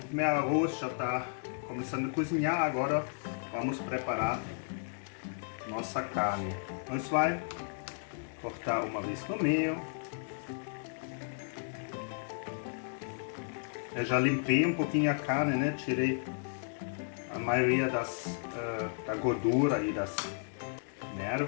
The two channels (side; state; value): right; silent; digital silence